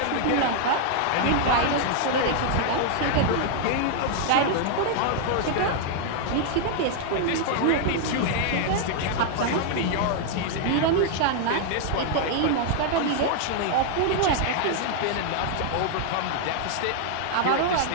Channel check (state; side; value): different; both; correlation 0.00